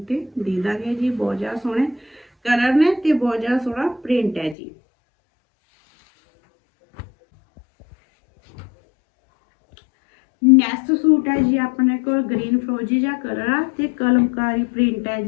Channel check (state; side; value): drops out; right; at 4.5 s